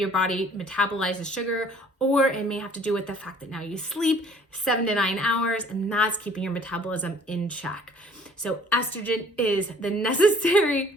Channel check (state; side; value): normal; both; correlation 0.55